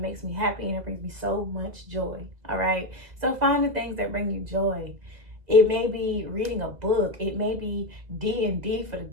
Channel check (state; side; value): late; left; 2.0 ms